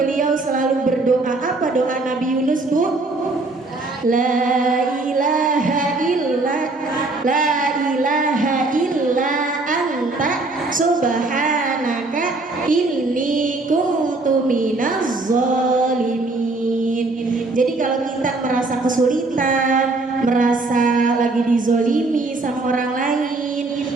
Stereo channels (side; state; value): left; quieter; 3.3 dB